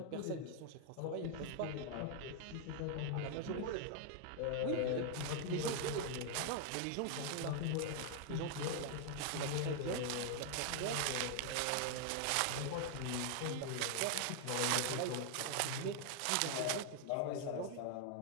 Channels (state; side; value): different; both; correlation 0.00